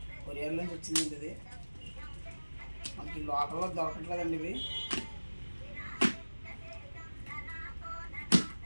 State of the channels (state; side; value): inverted; both; correlation -1.00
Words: కొరియర్ నుంచి వచ్చిందండి ఇది. మనకి లోకల్లో దొరకట్లేదండి ఇవి.